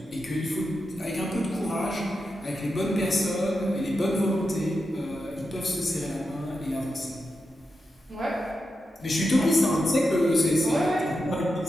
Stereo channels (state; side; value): normal; both; correlation 0.88